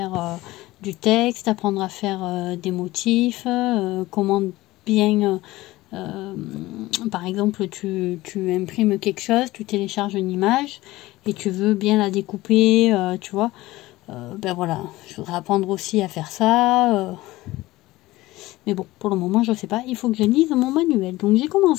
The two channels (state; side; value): quieter; right; 18.2 dB